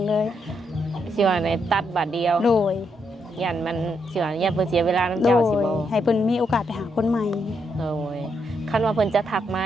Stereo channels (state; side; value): normal; both; correlation 0.79